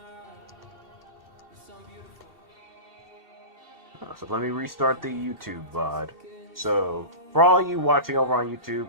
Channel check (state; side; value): late; left; 2.7 ms